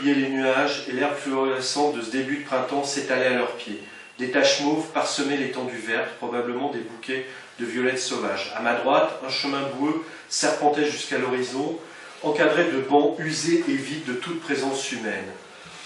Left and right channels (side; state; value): both; identical; correlation 1.00